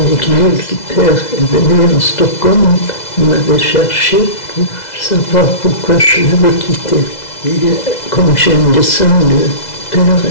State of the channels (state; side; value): late; right; 2.0 ms